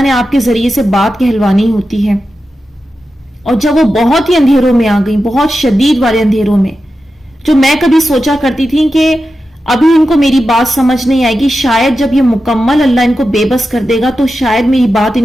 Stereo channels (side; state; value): both; normal; correlation 0.91